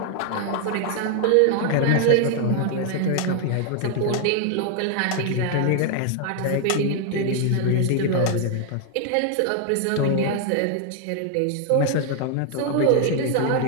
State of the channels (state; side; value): different; both; correlation 0.00